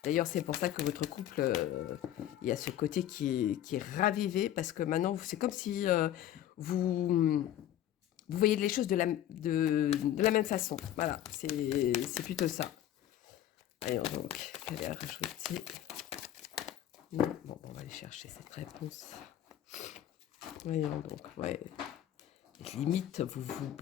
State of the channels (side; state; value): right; quieter; 11.8 dB